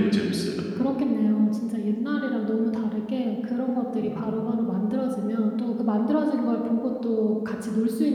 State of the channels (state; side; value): identical; both; correlation 1.00